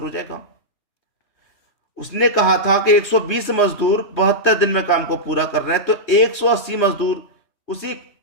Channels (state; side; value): late; right; 3.2 ms